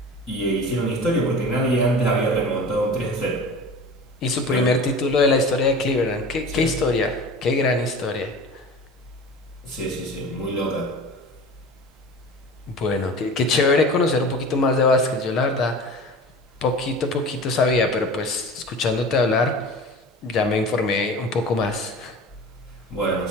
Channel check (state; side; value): normal; both; correlation 0.37